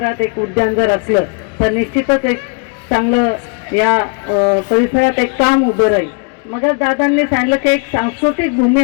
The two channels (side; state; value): right; quieter; 35.3 dB